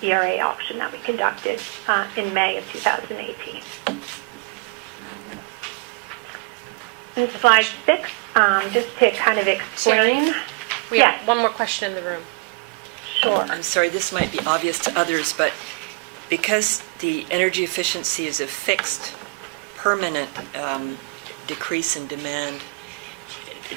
ERA auction that we conducted in May of 2018. In slide 6, just to kind of explain We have Yes. one more question in the room. Sure. I'm sorry, this might be obvious to others, but because the energy efficiency is a fixed, permanent decrease in demand,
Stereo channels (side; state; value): left; quieter; 31.8 dB